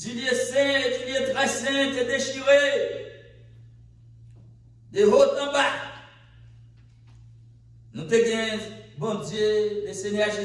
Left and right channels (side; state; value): both; identical; correlation 1.00